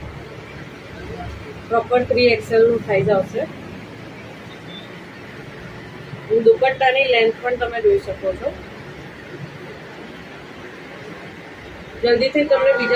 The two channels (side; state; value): both; identical; correlation 1.00